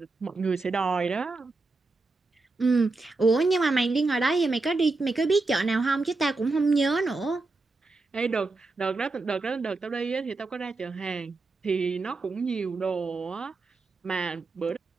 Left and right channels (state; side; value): quieter; left; 3.5 dB